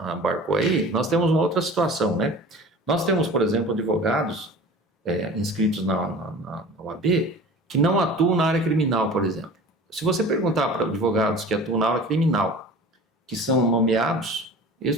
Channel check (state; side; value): normal; both; correlation 0.40